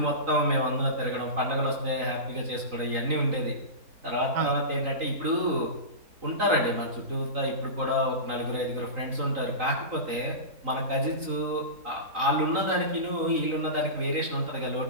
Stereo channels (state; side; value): late; left; 3.9 ms